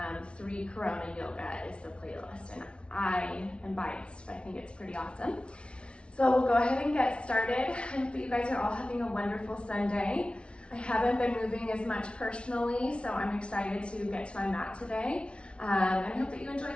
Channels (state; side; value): late; right; 0.059 ms